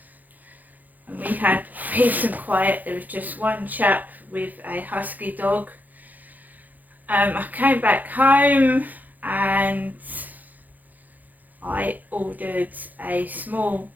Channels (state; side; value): late; left; 0.082 ms